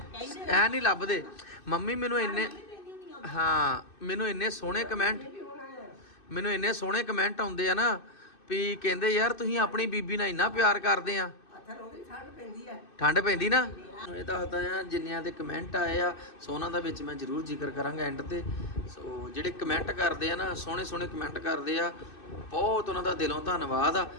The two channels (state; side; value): late; right; 2.6 ms